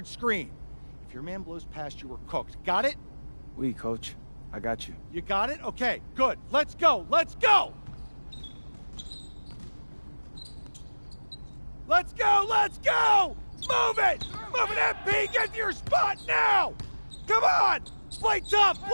screen. If your man blows past you, we're cooked. Got it? Oui, coach. I got you. You got it? Okay, good. Let's go! Let's go! Let's go! Let's go! Move it! Move it, MP! Get to your spot now! Come on! Play tough!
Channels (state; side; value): inverted; both; correlation -1.00